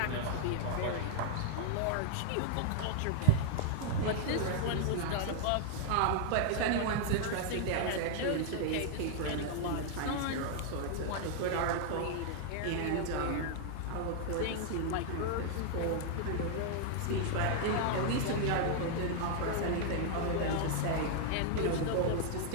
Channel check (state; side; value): different; both; correlation -0.01